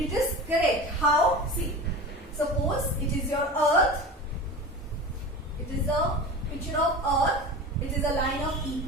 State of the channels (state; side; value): normal; both; correlation 0.31